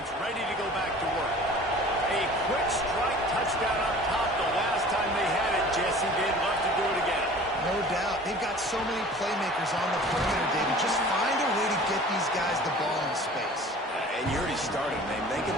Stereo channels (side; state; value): both; normal; correlation 0.45